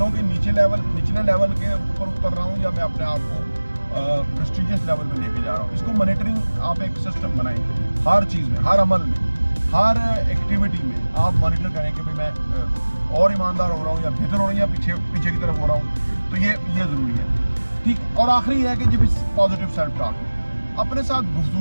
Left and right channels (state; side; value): inverted; both; correlation -1.00